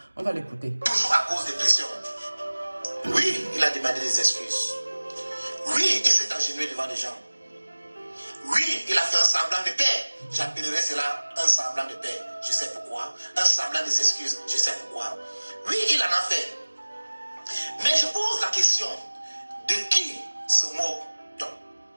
On va l'écouter. Toujours à cause des pressions. Oui, il a demandé des excuses. Oui, il s'est agenouillé devant les gens. Oui, il a fait un semblant de paix. J'appellerais cela un semblant de paix. Je sais pourquoi. Un semblant des excuses. Je sais pourquoi. Oui, il en a fait. Mais je pose la question, de qui se moque-t-on?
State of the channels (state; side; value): inverted; both; correlation -1.00